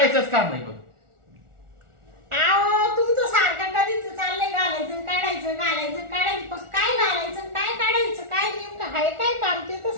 काम नाही बघ. आहो तुमचं सारखं कधीच चाललंय घालायचं काढायचं घालायचं काढायचं पण काय घालायचं काय काढायचं काय नेमकं आहे काय काम ते तर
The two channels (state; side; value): late; left; 1.4 ms